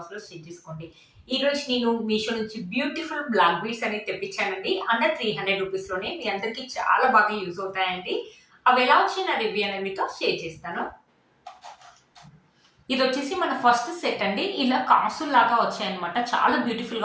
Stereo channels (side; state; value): both; identical; correlation 1.00